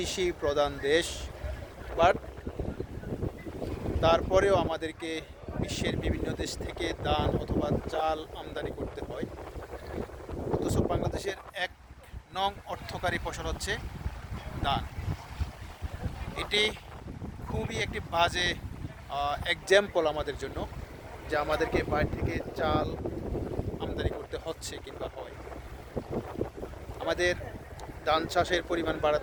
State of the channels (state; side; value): identical; both; correlation 1.00